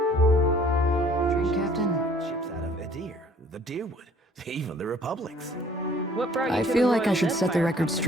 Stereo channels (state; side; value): normal; both; correlation 0.56